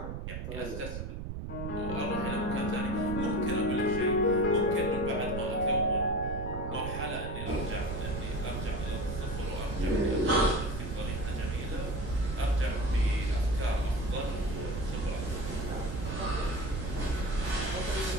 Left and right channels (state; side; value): noise; right; rumble, 5 dB below the sound